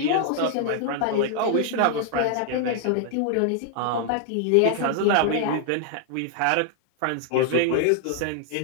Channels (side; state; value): both; different; correlation 0.00